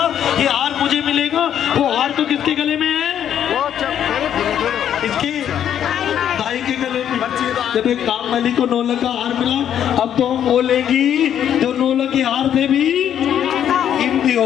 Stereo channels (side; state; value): right; quieter; 9.8 dB